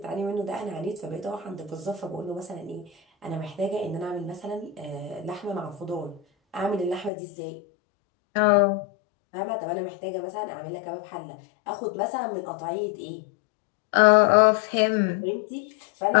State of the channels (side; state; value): right; drops out; at 7.1 s